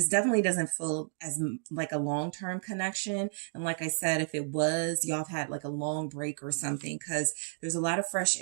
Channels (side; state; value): left; silent; digital silence